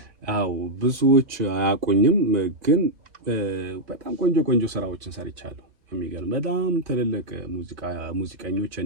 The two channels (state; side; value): late; left; 2.9 ms